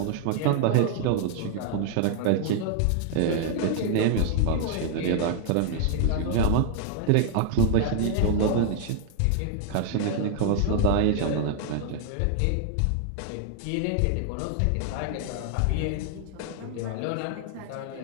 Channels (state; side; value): different; both; correlation 0.00